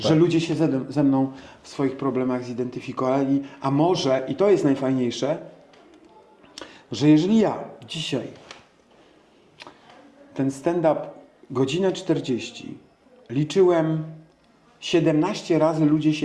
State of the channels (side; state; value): both; identical; correlation 1.00